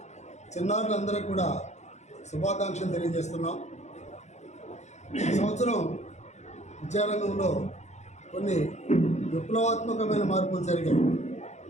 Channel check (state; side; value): late; right; 0.33 ms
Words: చిన్నారులందరికీ కూడా శుభాకాంక్షలు తెలియజేస్తున్నాం. ఈ సంవత్సరం విద్యారంగంలో కొన్ని విప్లవాత్మకమైన మార్పులు జరిగాయి.